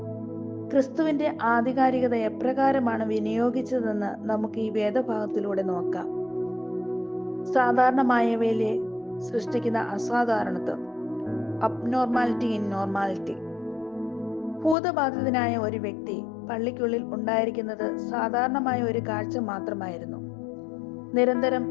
ക്രിസ്തുവിന്റെ ആധികാരികത എപ്രകാരമാണ് വിനിയോഗിച്ചതെന്ന് നമുക്ക് ഈ വേദഭാഗത്തിലൂടെ നോക്കാം. സാധാരണമായവയിലെ സൃഷ്ടിക്കുന്ന അസാധാരണത്വം, അബ്നോർമാലിറ്റി ഇൻ നോർമാലിറ്റി. ഭൂതബാധിതനായ ഒരു വ്യക്തി പള്ളിക്കുള്ളിൽ ഉണ്ടായിരിക്കുന്നത് സാധാരണമായ ഒരു കാഴ്ച മാത്രമായിരുന്നു.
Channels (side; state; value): right; drops out; at 14.8 s